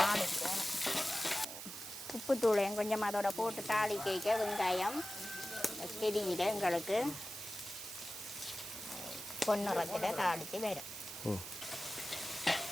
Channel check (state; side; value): noise; right; hiss, 9 dB below the sound